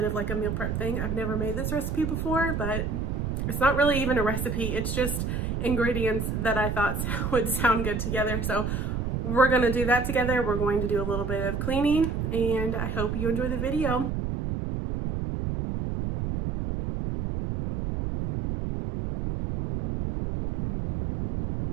of like a meal prep thing. I've never made this recipe before, but it's not really even a recipe. It's just ingredients that I thought would sound good together. So we're going to do that together. We're going to do a little bit of cleaning and I hope you enjoy the video.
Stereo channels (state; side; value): noise; right; rumble, 2 dB below the sound